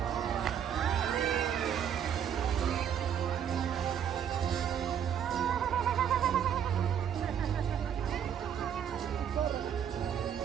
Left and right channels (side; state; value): left; quieter; 8.8 dB